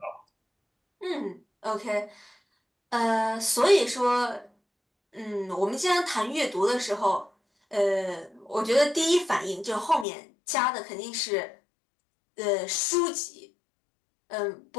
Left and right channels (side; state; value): right; drops out; at 10.1 s